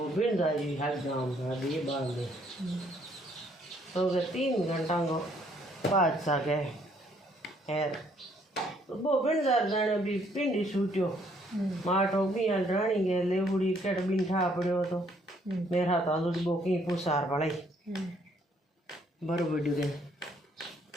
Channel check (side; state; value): both; normal; correlation 0.66